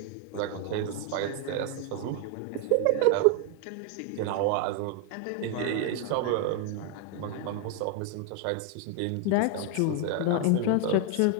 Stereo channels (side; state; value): both; different; correlation 0.01